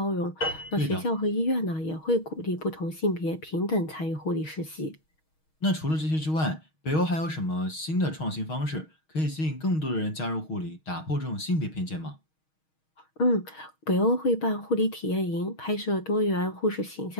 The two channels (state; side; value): late; right; 6.4 ms